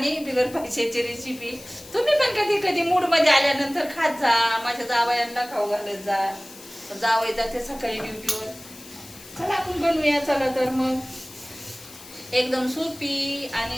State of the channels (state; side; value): noise; left; hiss, 18 dB below the sound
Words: बिगर पैशाची रेसिपी. तुम्ही पण कधी कधी मूड मध्ये आल्यानंतर खात जा, माझ्या जावयांना खाऊ घालत जा. जावई जाते सकाळी ड्युटीवर. चला आपण बनवूया. चला तर मग एकदम सोपी